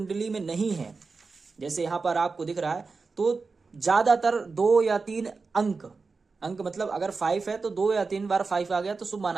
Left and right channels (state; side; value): quieter; left; 4.4 dB